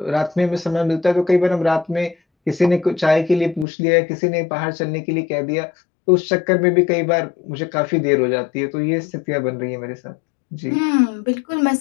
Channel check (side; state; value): right; drops out; at 3.7 s